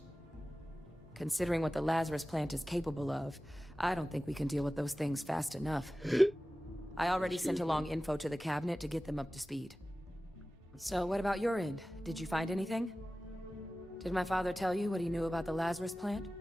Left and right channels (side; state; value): both; normal; correlation 0.96